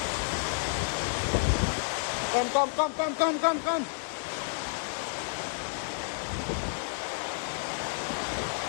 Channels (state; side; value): silent; right; digital silence